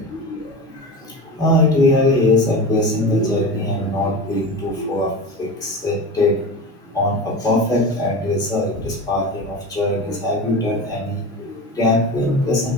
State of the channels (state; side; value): normal; both; correlation 0.28